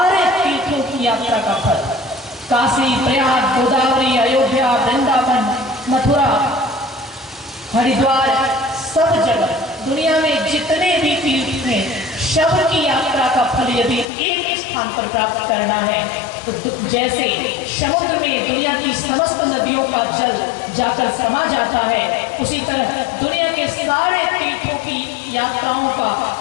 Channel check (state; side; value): drops out; right; at 14.1 s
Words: तीर्थों की यात्रा का फल, काशी, प्रयाग, गोदावरी, अयोध्या, वृंदावन, मथुरा, हरिद्वार, सब जगह दुनिया में जितने भी तीर्थ हैं, सब की यात्रा का फल यदि एक स्थान पर प्राप्त करना है तो जैसे समुद्र में दुनिया की समस्त नदियों का जल जाकर समा जाता है, उसी तरह दुनिया के सारे तीर्थों की यात्राओं का